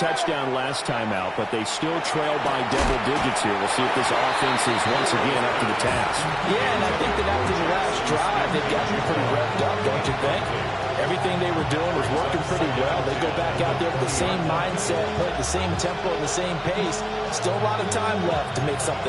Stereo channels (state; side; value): identical; both; correlation 1.00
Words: last time out, but they still trail by double digits here. We'll see if this offense is once again up to the task. Yeah, and I think that after the last drive, they've gotten pretty revved up, don't you think? Everything they were doing was working pretty well. They go back out there with the same mindset, put the same tempo and the same pace. Still a lot of time left to make